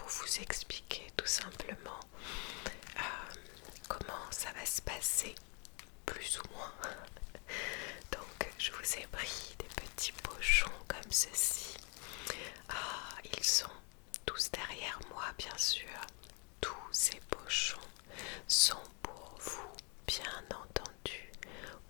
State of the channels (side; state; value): right; quieter; 35.2 dB